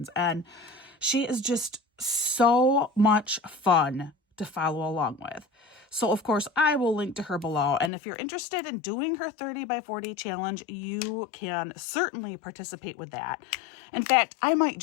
and she is just so much fun to follow along with. So of course I will link to her below. And if you're interested in doing her 30 by 40 challenge, you can certainly participate with that. In fact, I might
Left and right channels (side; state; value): right; drops out; at 7.9 s